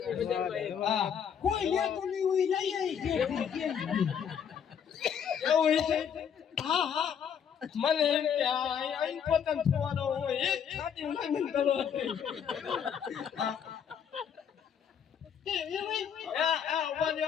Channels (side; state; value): right; quieter; 7.9 dB